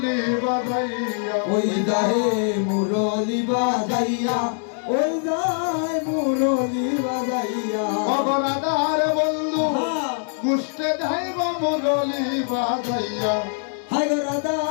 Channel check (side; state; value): right; silent; 63 dB below the other